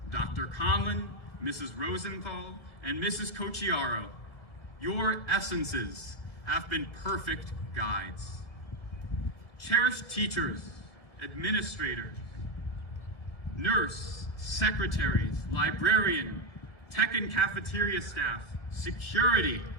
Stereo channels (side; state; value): right; late; 1.5 ms